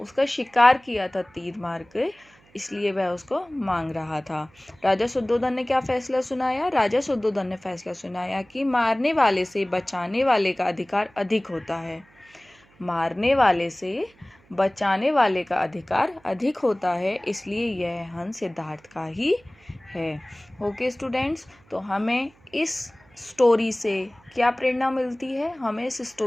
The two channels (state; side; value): noise; right; hum, 30 dB below the sound